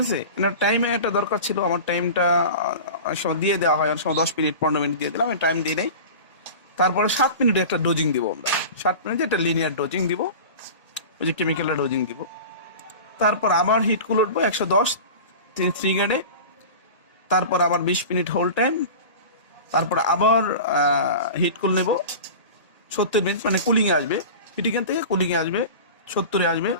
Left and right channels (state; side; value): inverted; both; correlation -0.34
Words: আছে, এনার টাইমে একটা দরকার ছিল, আমার টাইমটা অনেক সময় দিয়ে দেওয়া হয়, অনেক সময় 10 মিনিট 15 মিনিট দিয়ে দিলাম, আমি টাইম দিয়ে নেই। তারপরে 7 মিনিটে একটা ডোজিং দিব, আমরা 7 মিনিটে একটা লিনিয়ার ডোজিং দিব, ওই যে কেমিক্যালের ডোজিং দিব। তারপর আবার হিট কুল উঠবো 110 3 গ্রেডে। তারপর আবার 20 মিনিট হোল টাইম। তারপর আবার হিট কুল নেব 70 মিনিট, মানে কুলিংয়ে আসবে, হিটিং থেকে কুলিংয়ে আসবে, 70-এ আসবে